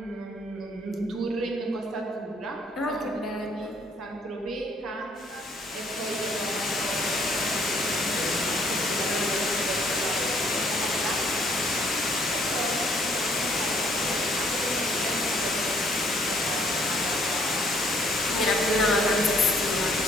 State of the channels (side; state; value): both; normal; correlation 0.64